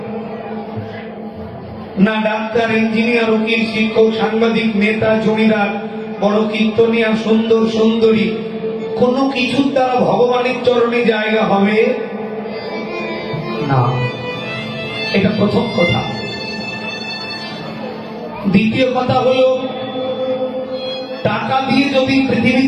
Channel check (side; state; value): both; identical; correlation 1.00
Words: না। ডাক্তার, ইঞ্জিনিয়ার, উকিল, শিক্ষক, সাংবাদিক, নেতা, জমিদার, বড় কীর্তনিয়া, সুন্দর সুন্দরী, কোনো কিছুর দ্বারা ভগবানের চরণে জায়গা হবে না। এটা প্রথম কথা। দ্বিতীয় কথা হলো, টাকা দিয়ে যদি